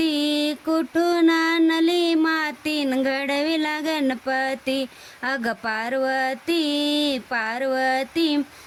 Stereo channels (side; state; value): both; identical; correlation 1.00